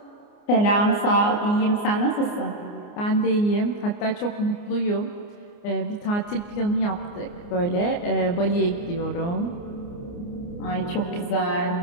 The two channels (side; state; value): right; late; 29 ms